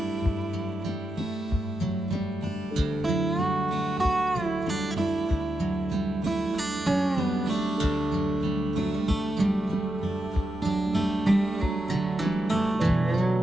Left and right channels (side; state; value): both; normal; correlation 0.86